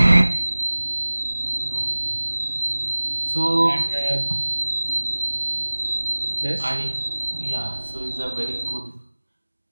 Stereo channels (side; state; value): both; inverted; correlation -1.00